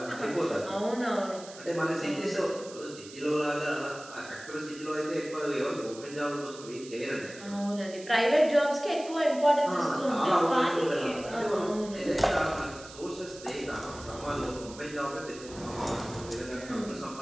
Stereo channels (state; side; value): noise; right; hiss, 17 dB below the sound